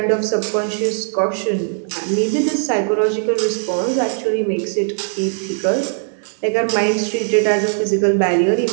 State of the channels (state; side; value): silent; left; digital silence